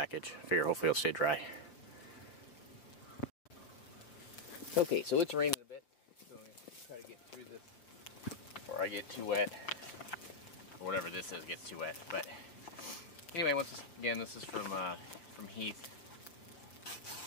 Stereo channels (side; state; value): right; late; 6.2 ms